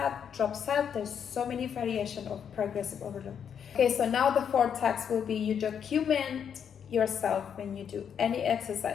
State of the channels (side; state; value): right; quieter; 7.9 dB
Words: drop set. There's so many variations of progressive overload. Okay, so now the fourth task will be you document yourself when you do any